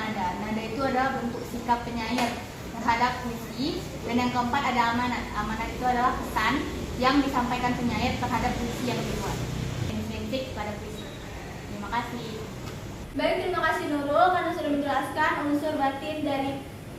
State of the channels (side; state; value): both; identical; correlation 1.00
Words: Nada itu adalah bentuk sikap penyair terhadap puisi. Dan yang keempat ada amanat. Amanat itu adalah pesan yang disampaikan penyair terhadap puisi yang dibuat. Intrinsik pada puisi. Terima kasih. Baik, terima kasih Nurul karena sudah menjelaskan unsur batin dari